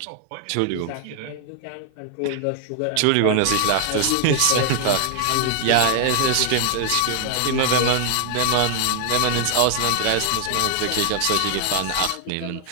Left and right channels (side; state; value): both; different; correlation 0.00